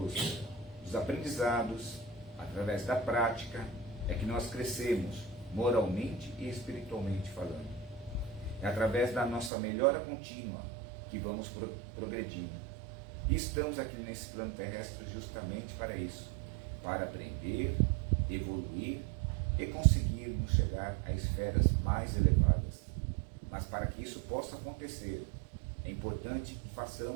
aprendizados, através da prática, é que nós crescemos moralmente e espiritualmente falando. É através da nossa melhora contínua que vamos progredindo. E estamos aqui nesse plano terrestre justamente para isso, para aprender, evoluir e conseguirmos chegar a esferas mais elevadas. Mas para que isso possa acontecer, é importante que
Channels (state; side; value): drops out; left; at 9.5 s